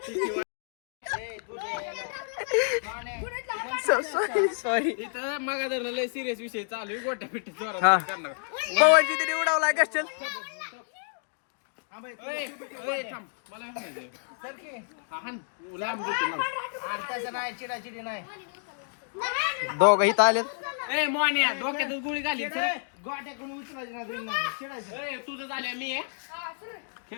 सॉरी इथं मागा धरणं लय सिरियस विषय चालू आहे गोट्या पिट्या हा. जोरात करणार पवन शिंदे उडावलाय गस्टल थांब मला हाण लांब देतो लांब दोघ इथं आलेत मोन्या डोक्यातच गोळी घाली सर गोट्या कोणी उचलायची तुझं झालं मी आहे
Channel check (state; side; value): silent; right; digital silence